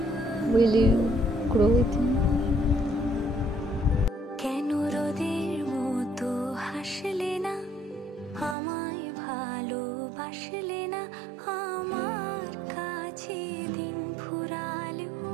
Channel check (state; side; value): drops out; left; at 8.6 s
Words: Will you grow with me?